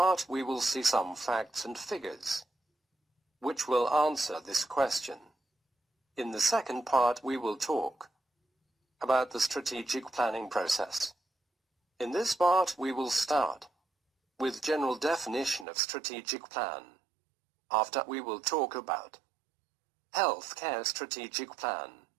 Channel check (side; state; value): left; drops out; at 15.7 s